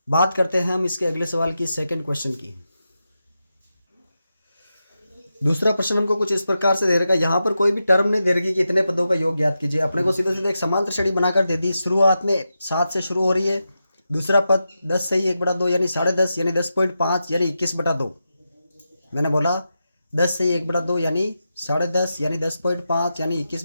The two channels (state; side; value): inverted; both; correlation -0.88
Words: बात करते हैं हम इसके अगले सवाल की, सेकंड क्वेश्चन की। दूसरा प्रश्न हमको कुछ इस प्रकार से दे रखा है, यहाँ पर कोई भी टर्म नहीं दे रखी कि इतने पदों का योग ज्ञात कीजिए। अपने को सीधे सीधे एक समांतर श्रेणी बनाकर दे दी। शुरुआत में 7 से शुरू हो रही है, दूसरा पद 10 से ही 1/2 यानी 10.5 यानी 10.5 यानी 21/2। मैंने बोला 10 से ही 1/2 यानी 10.5 यानी 10.5 यानी